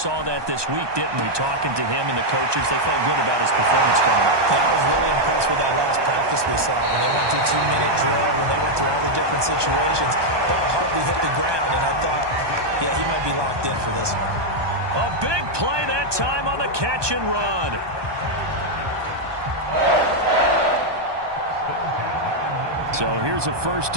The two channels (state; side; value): late; left; 1.2 ms